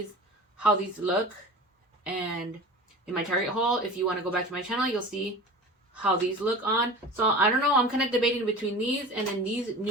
how these look, and in my Target haul, if you want to go back to my channel, you'll see how these look on. So I don't know, I'm kind of debating between these and then these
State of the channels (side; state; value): both; normal; correlation 0.36